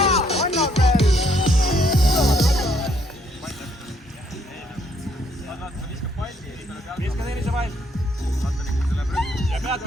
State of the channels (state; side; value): normal; both; correlation 0.68